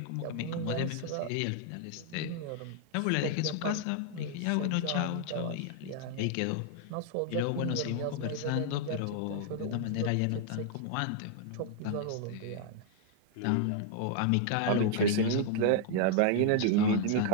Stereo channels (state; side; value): different; both; correlation 0.00